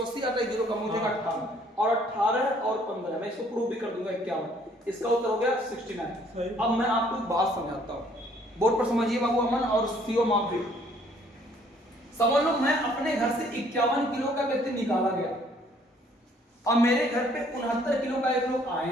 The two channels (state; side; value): normal; both; correlation 0.61